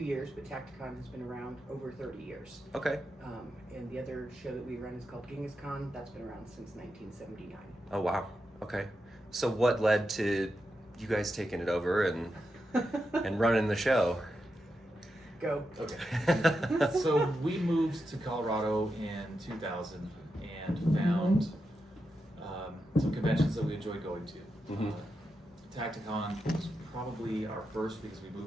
but Tacticon has been around over 30 years. Okay. And the other show that we run is called GenghisCon. That's been around since 1979. Oh wow. Okay. So what led to you guys taking it over and running the show? Go. Okay. So we moved to Colorado in 2000 and found some conventions that we enjoyed going to. Mm-hmm. Tacticon was probably our first because we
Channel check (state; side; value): normal; both; correlation 0.87